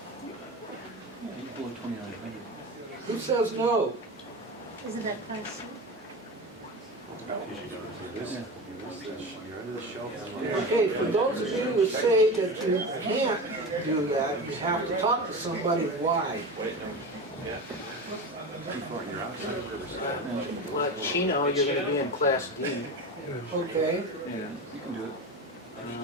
Who says no? Isn't that Class C? Okay, for those of you who say that you can't do that, you have to talk to somebody why. Well, Chino, you're going to be in Class D. Okay, Yeah, you can do it.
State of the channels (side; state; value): both; normal; correlation 0.26